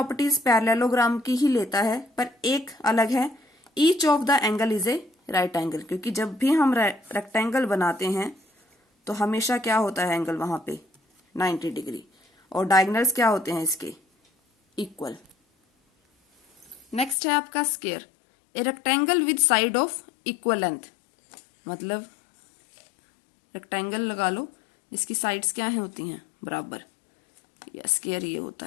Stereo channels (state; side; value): drops out; right; at 17.2 s